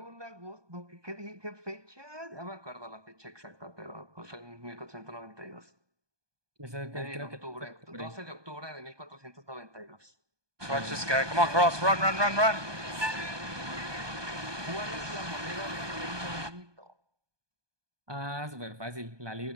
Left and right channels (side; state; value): left; late; 1.2 ms